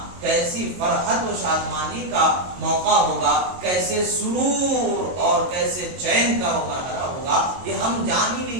کیسی فرحت و شادمانی کا موقع ہوگا، کیسے سرور اور کیسے چین کا وہ مرحلہ ہوگا، یہ ہم جان ہی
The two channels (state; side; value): late; left; 22 ms